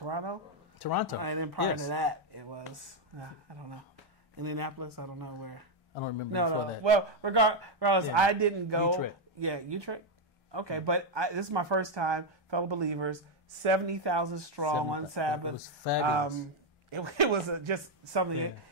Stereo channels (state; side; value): normal; both; correlation 0.03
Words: And then prior to that, it was, I don't know, Indianapolis, I don't know where. I don't remember that. Well, regardless, I didn't go. Utrecht. Yeah, Utrecht. Okay, but this is my first time, fellow believers, 70,000 strong on Sabbath. It was fabulous. It was just something